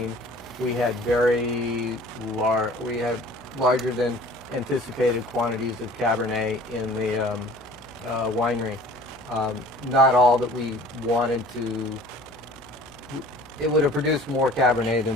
we had larger than anticipated quantities of Cabernet in the winery. Not all that we wanted to. It would have produced more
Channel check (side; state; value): left; noise; hum, 25 dB below the sound